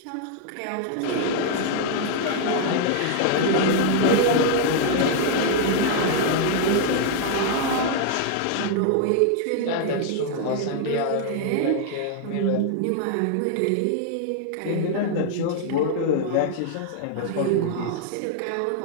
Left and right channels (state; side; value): different; both; correlation 0.00